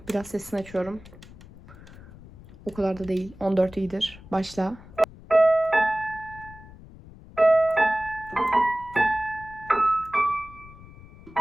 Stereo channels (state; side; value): noise; left; rumble, 19 dB below the sound